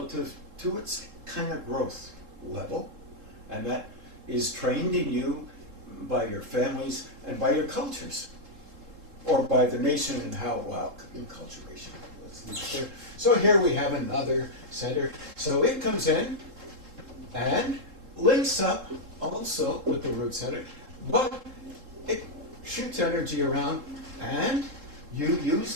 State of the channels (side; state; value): left; late; 3.7 ms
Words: to its kind of growth level, and that is trained in you by your families and by your cultures, or by the nation and how, well, enculturation. So here we have another center. So it comes in and links up also with the root center, but it shoots energy around, and you use